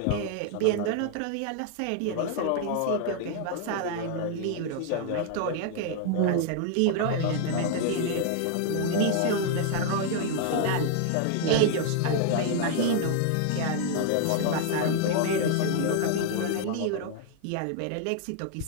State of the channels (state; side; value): different; both; correlation 0.00